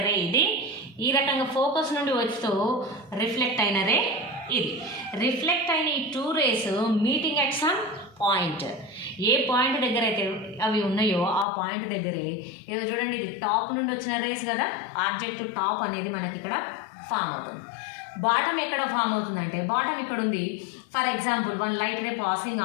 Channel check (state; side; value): drops out; right; at 11.5 s